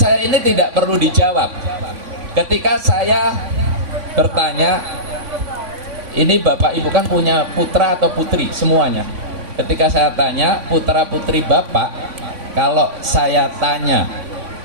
ini tidak perlu dijawab. Ketika saya bertanya, ini Bapak Ibu kan punya putra atau putri semuanya. Ketika saya tanya putra putri Bapak, kalau saya tanya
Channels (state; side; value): late; left; 3.5 ms